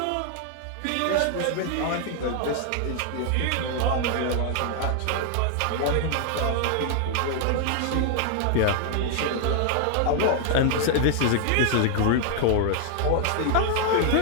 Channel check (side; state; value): both; different; correlation 0.00